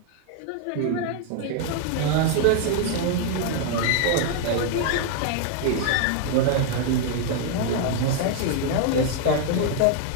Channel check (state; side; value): different; both; correlation 0.00